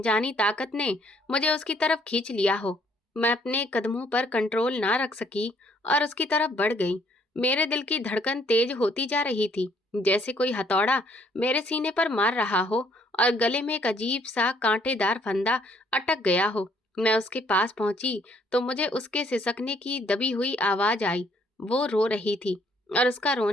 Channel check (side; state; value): both; normal; correlation 0.65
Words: ताकत ने मुझे उसकी तरफ खींच लिया हो। मैं अपने कदमों पर कंट्रोल ना रख सकी और उसकी तरफ बढ़ गई। मेरे दिल की धड़कन तेज होती जा रही थी, जैसे कोई हथौड़ा मेरे सीने पर मार रहा हो और गले में एक अजीब सा कांटेदार फंदा अटक गया हो। मैं उसके पास पहुंची तो मुझे उसके सिसकने की दबी हुई आवाज आई। वो रो रही थी और उसका